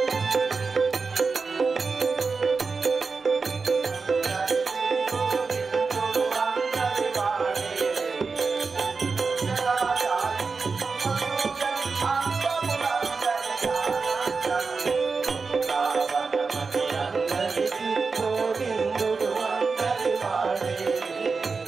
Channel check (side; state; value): left; quieter; 4.6 dB